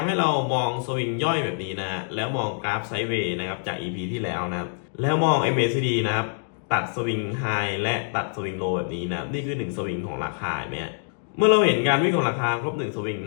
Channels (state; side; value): silent; right; digital silence